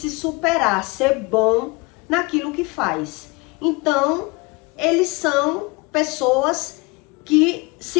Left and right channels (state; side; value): quieter; right; 26.7 dB